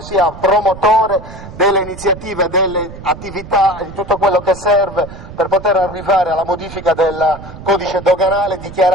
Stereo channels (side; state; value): right; noise; rumble, 14 dB below the sound